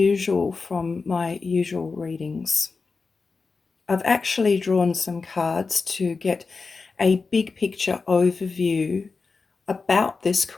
from my usual readings. I've actually drawn some cards to get a big picture overview about this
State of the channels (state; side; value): quieter; right; 4.4 dB